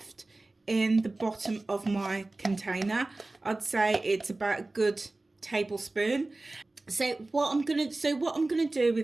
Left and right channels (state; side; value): quieter; left; 3.0 dB